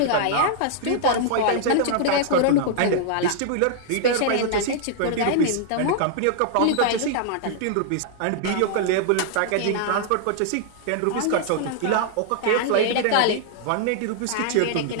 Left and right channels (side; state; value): both; different; correlation -0.01